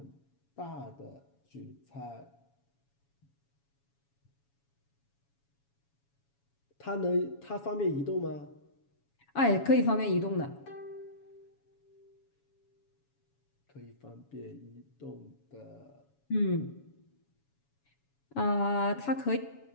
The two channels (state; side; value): late; right; 7.1 ms